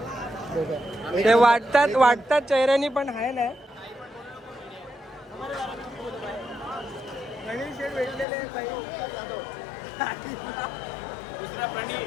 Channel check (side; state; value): right; drops out; at 8.2 s